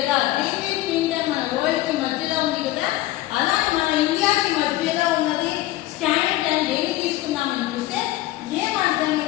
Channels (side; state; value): right; quieter; 16.2 dB